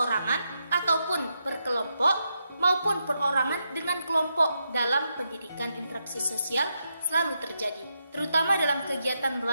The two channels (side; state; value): both; inverted; correlation -0.83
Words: ataupun berkelompok maupun perorangan dengan kelompok dalam pendidikan. Interaksi sosial selalu terjadi, terutama dalam kegiatan